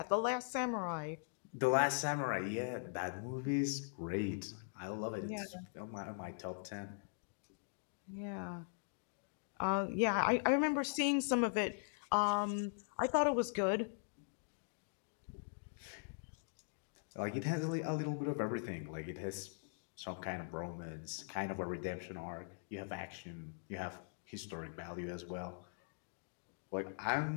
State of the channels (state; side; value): silent; right; digital silence